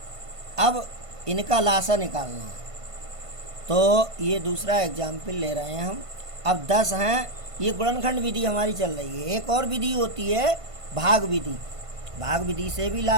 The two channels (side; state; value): left; late; 1.5 ms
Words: अब इनका लासा निकालना है, तो ये दूसरा एग्जाम्पल ले रहे हैं हम। अब 10 हैं, ये गुणनखंड विधि हमारी चल रही है। एक और विधि होती है भाग विधि, भाग विधि से भी